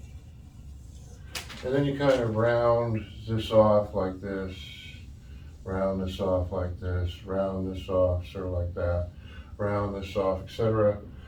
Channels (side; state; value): both; identical; correlation 1.00